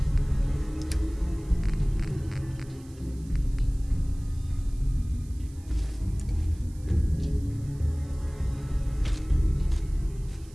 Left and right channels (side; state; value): right; noise; hiss, 26 dB below the sound